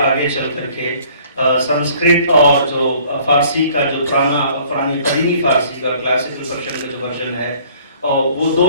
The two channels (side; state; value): both; inverted; correlation -0.56